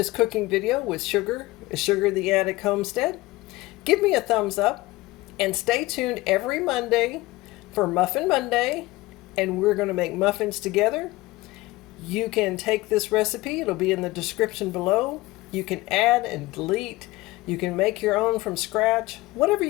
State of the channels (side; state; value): right; quieter; 19.8 dB